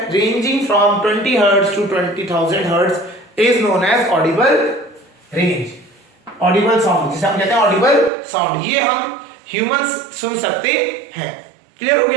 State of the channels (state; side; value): drops out; left; at 8.1 s